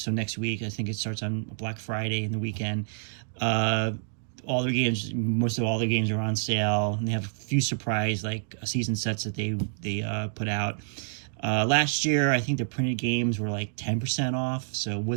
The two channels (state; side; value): silent; left; digital silence